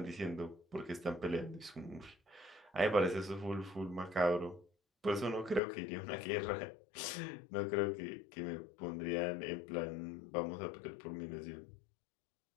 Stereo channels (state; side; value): drops out; right; at 5.6 s